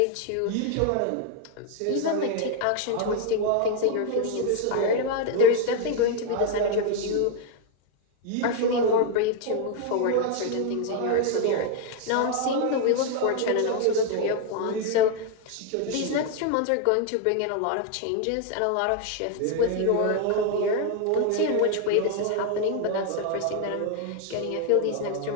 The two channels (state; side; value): different; both; correlation 0.00